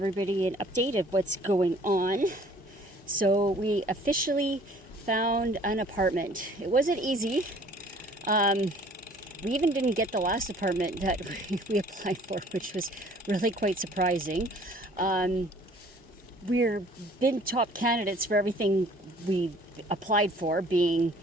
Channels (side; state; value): both; normal; correlation 0.54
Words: an update of what's going on. So we officially found an apartment. It wasn't easy. We even didn't get the last apartment that we applied for, which was really quite surprising. We're been top candidates for everything we applied for, being